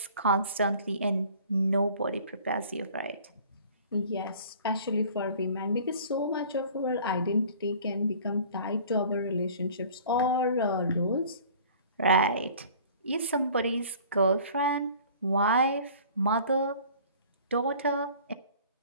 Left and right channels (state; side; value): inverted; both; correlation -0.48